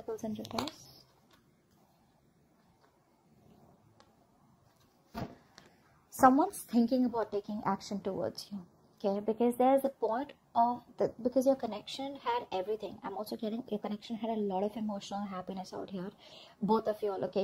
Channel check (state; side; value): identical; both; correlation 1.00